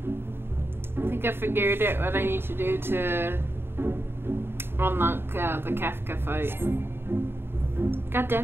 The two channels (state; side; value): late; left; 0.11 ms